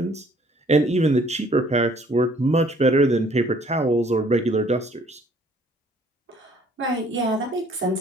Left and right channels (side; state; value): both; normal; correlation 0.59